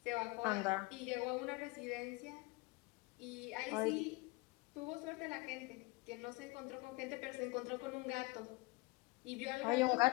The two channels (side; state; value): right; quieter; 24.0 dB